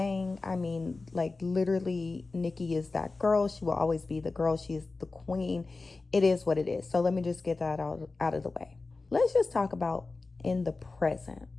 I mean, like literally, Nicki is that girl. She will always be the girl. She is the queen. It is what it is. So let me just get that out of the way. Let's just talk about in the present.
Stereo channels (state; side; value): quieter; right; 3.7 dB